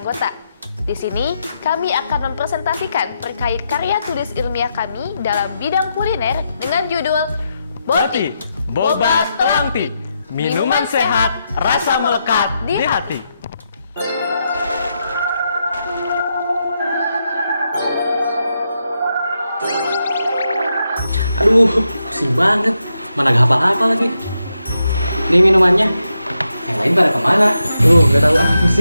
Di sini, kami akan mempresentasikan terkait karya tulis ilmiah kami dalam bidang kuliner dengan judul Boti, Boba Telangti, minuman sehat, rasa melekat di hati. Aduh, pusing banget. Mana gak hafal-hafal lagi. Ini minumannya. Yang lain pada kemana? Gak tahu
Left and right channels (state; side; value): inverted; both; correlation -0.84